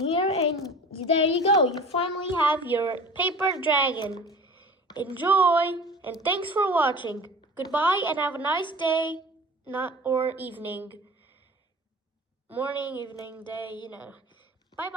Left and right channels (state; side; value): normal; both; correlation 0.40